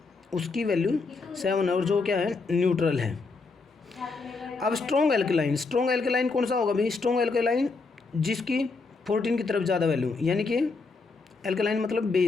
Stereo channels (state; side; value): quieter; right; 4.1 dB